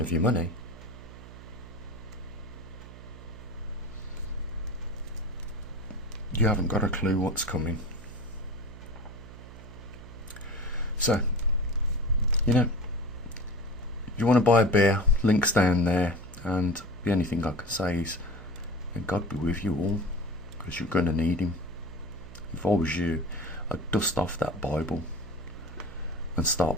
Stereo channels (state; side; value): noise; right; hum, 16 dB below the sound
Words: your money. You haven't got a clue what's coming. So, you know, you want to buy a beer, links down there, and the only thing I can say is, and God be with you all, because you're going to need him. If I was you, I'd dust off that Bible and